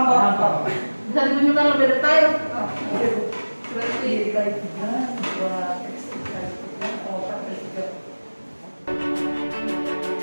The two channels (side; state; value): both; inverted; correlation -1.00